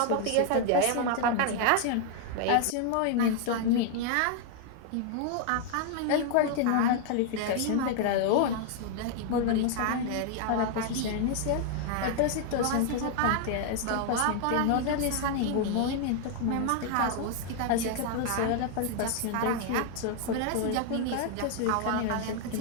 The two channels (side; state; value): both; different; correlation 0.00